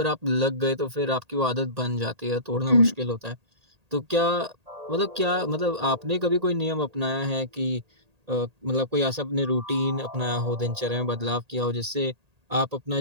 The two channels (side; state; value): left; late; 1.8 ms